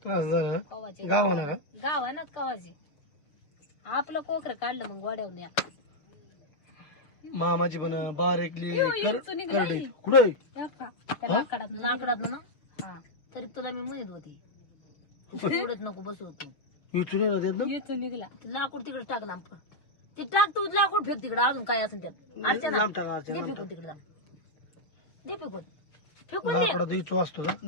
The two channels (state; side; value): late; right; 6.5 ms